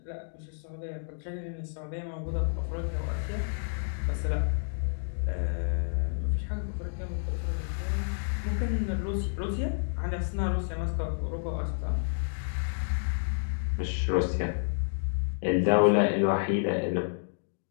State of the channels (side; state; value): right; silent; digital silence